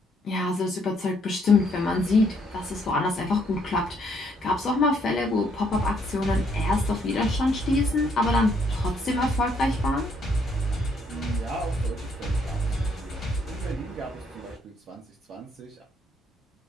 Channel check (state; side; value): normal; both; correlation 0.70